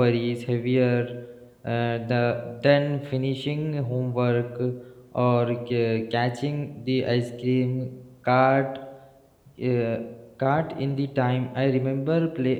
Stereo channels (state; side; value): identical; both; correlation 1.00